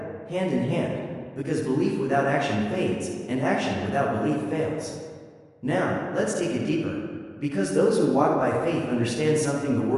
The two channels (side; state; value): both; identical; correlation 1.00